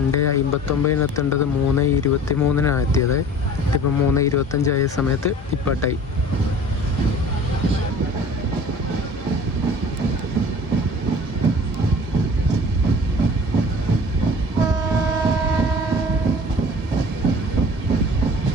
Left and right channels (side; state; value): both; normal; correlation 0.44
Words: എത്തേണ്ടത് 3:23 എത്തിയത്. ഇപ്പം 3:25 സമയത്ത് ഡിപ്പാർട്ടായി.